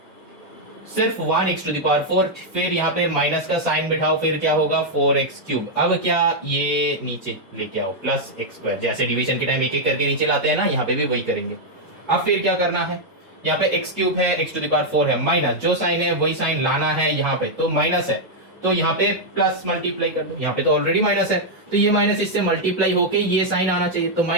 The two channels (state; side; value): normal; both; correlation -0.02